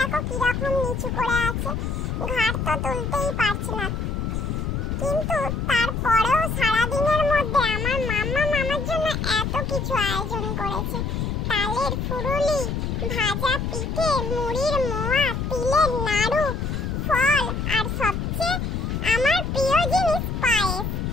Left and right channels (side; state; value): left; noise; rumble, 2 dB below the sound